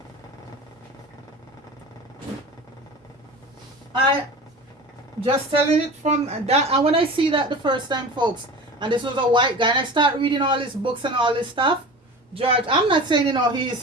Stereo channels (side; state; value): both; normal; correlation 0.35